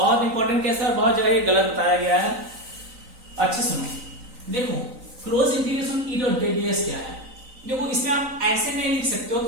इंपॉर्टेंट केस है और बहुत जगह ये गलत बताया गया है। अच्छे सुनो, देखो close integration E dot ds क्या है। देखो इसमें आप ऐसे नहीं लिख सकते हो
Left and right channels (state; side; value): late; left; 3.9 ms